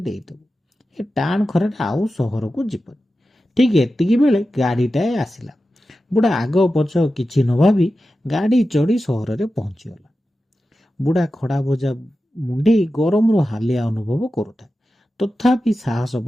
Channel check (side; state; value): both; normal; correlation 0.93